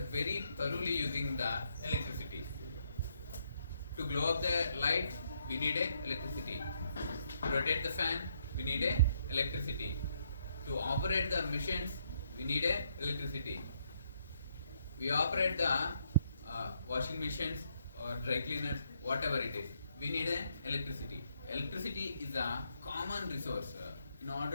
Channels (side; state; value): both; inverted; correlation -0.73